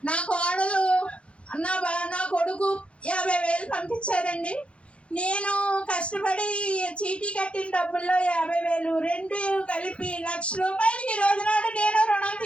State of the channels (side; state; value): right; late; 0.060 ms